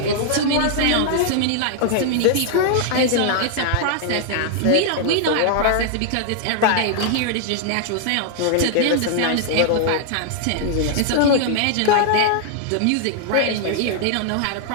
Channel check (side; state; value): both; different; correlation 0.00